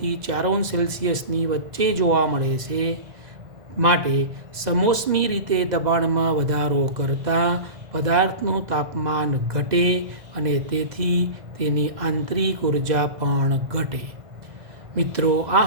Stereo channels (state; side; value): late; left; 2.0 ms